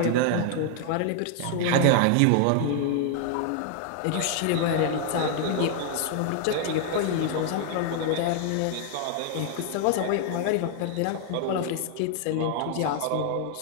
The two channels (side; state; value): both; different; correlation 0.00